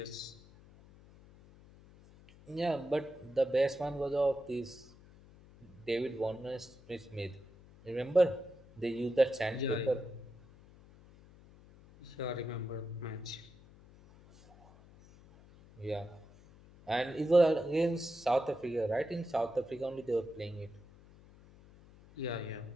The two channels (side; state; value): left; noise; hum, 23 dB below the sound